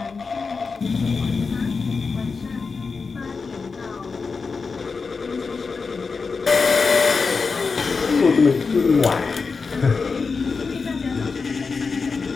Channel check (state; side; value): quieter; right; 4.7 dB